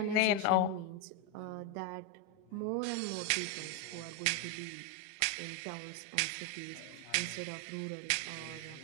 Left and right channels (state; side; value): different; both; correlation 0.02